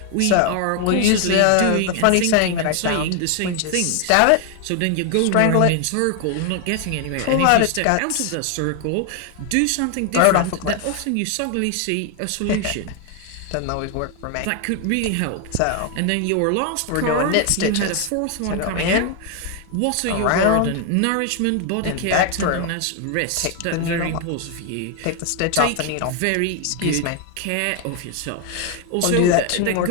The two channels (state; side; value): different; both; correlation 0.01